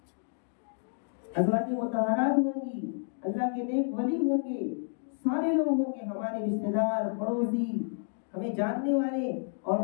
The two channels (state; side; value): silent; right; digital silence